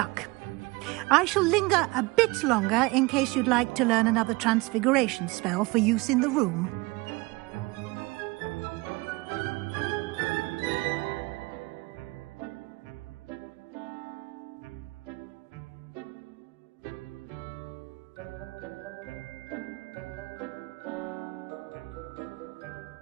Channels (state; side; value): quieter; left; 24.0 dB